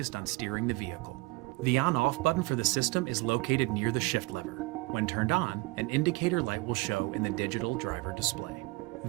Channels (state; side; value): quieter; left; 23.1 dB